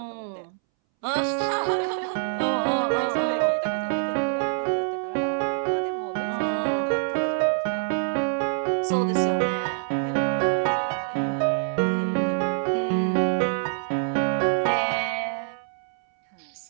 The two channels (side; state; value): left; silent; 61 dB below the other